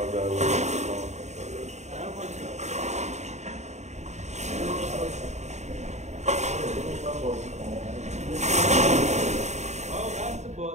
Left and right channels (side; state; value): left; late; 0.33 ms